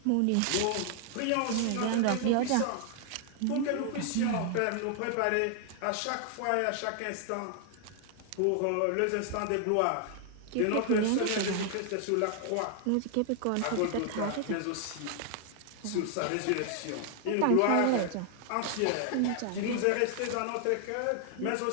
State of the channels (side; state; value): both; different; correlation 0.00